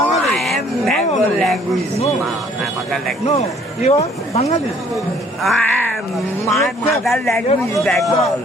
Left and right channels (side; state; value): both; normal; correlation 0.59